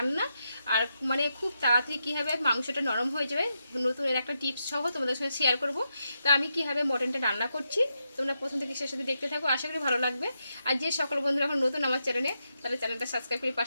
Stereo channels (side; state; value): both; inverted; correlation -0.84